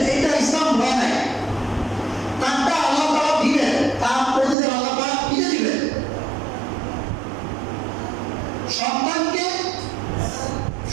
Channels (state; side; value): drops out; left; at 4.5 s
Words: এটা ইসলাম হয় নাই। তারটা আল্লাহ তাআলা দিবেন, তার প্রতিদিন আল্লাহ তাআলা দিয়ে দিবেন।